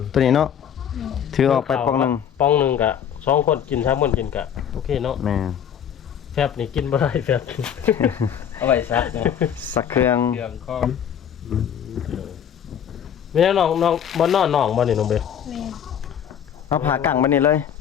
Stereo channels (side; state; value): right; quieter; 8.8 dB